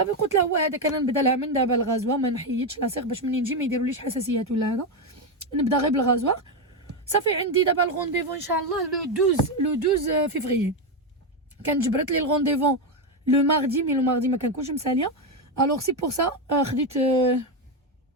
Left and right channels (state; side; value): normal; both; correlation 0.08